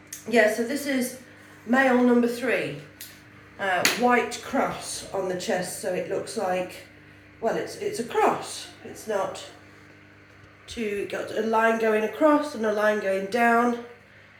Yeah, so this is male number 3. White cross on the chest, so it looks like, well, it's a cross. It's not two, got a line going across and a line going down.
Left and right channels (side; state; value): both; identical; correlation 1.00